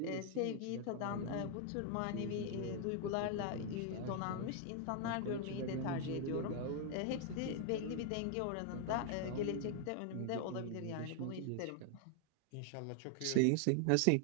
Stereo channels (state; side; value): different; both; correlation 0.00